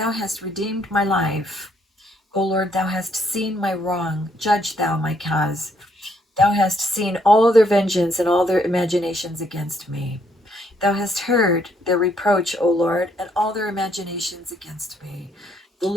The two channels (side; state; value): both; normal; correlation 0.70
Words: hast redeemed my life. O Lord, thou hast seen my wrong. Judge thou my cause. Thou hast seen all their vengeance and all their imaginations against me. Thou hast heard their reproach, O Lord, and all their imaginations against me. The